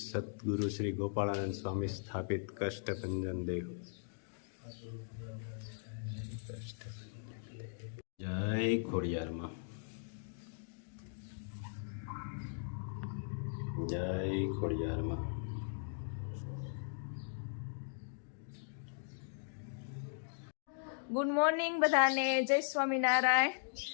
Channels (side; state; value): right; silent; digital silence